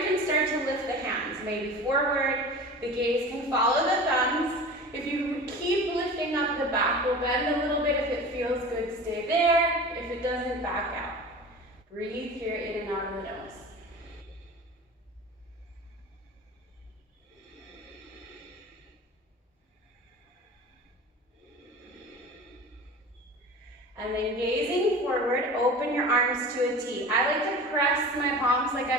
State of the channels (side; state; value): both; normal; correlation 0.36